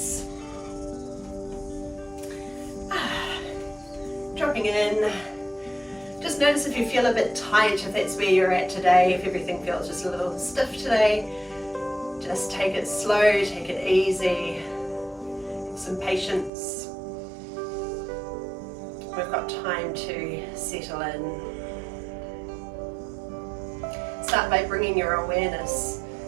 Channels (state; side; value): drops out; left; at 16.5 s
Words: dropping in. Just notice if you feel a bit tight, if that's where you're at today, if everything feels just a little stiff today. Just take it slow, take it easy, have some patience. We've got time to settle in. Start by bringing your awareness